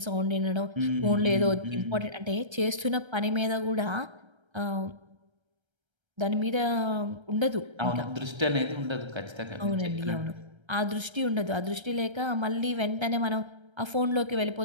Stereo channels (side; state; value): left; late; 1.3 ms